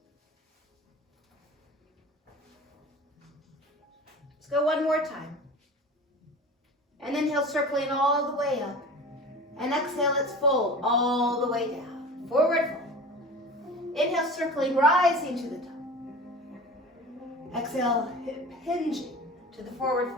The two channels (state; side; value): normal; both; correlation 0.36